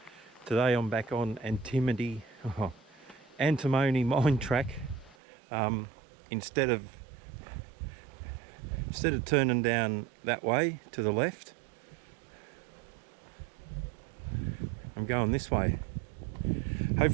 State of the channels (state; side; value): drops out; left; at 5.2 s